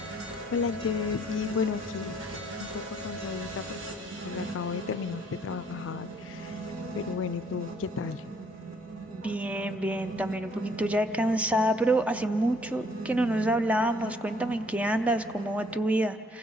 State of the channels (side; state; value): both; normal; correlation 0.62